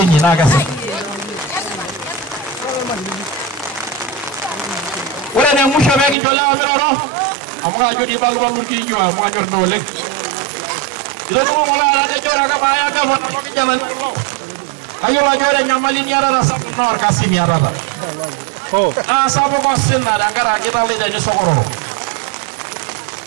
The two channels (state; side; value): drops out; left; at 6.2 s